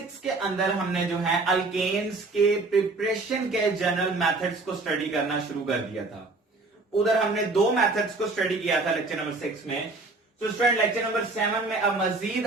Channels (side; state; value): left; quieter; 3.4 dB